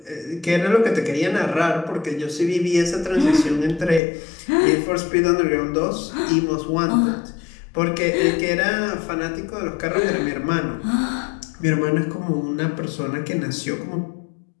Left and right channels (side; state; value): right; drops out; at 4.0 s